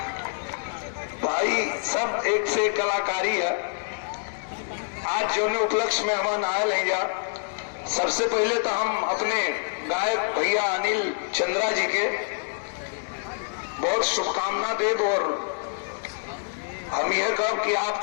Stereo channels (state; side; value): silent; right; 61 dB below the other